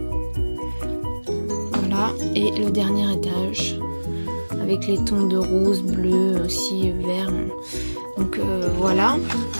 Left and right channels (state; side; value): inverted; both; correlation -1.00